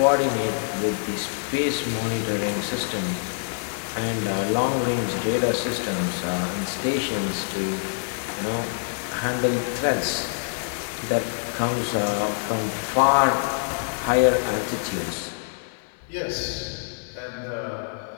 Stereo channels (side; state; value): right; silent; digital silence